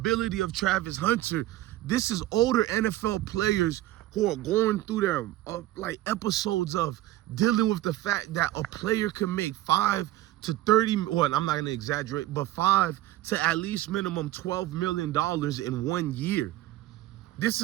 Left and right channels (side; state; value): left; quieter; 15.2 dB